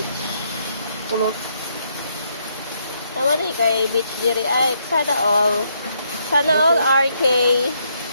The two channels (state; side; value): inverted; both; correlation -0.74